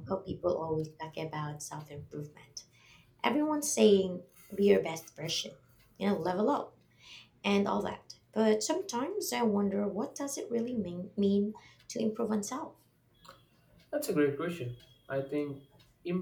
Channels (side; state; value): both; identical; correlation 1.00